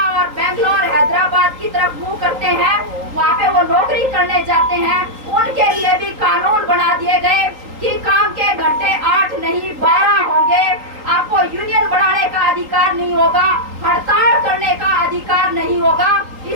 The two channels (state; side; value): late; left; 3.8 ms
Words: बेंगलोर, हैदराबाद की तरफ मुंह करते हैं, वहाँ पे वो नौकरी करने जाते हैं, उनके लिए भी कानून बना दिए गए कि काम के घंटे 8 नहीं 12 होंगे, आपको यूनियन बढ़ाने का अधिकार नहीं होगा, हड़ताल करने का अधिकार नहीं होगा।